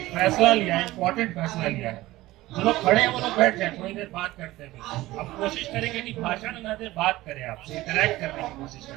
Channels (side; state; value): left; quieter; 17.6 dB